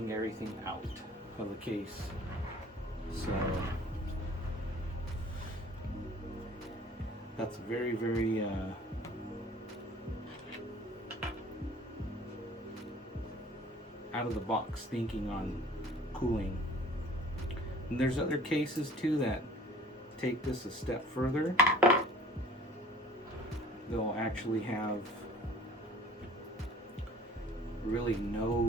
everything out of the case. So that's very, very out of the box thinking on cooling. And there's other cases too that take this a step further. They'll actually have really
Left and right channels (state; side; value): normal; both; correlation 0.51